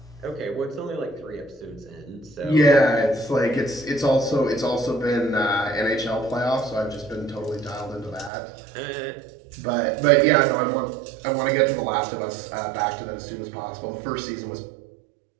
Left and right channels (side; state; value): left; drops out; at 8.3 s